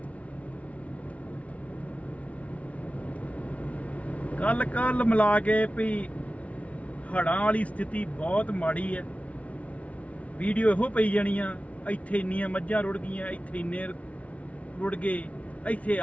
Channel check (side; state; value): right; late; 0.066 ms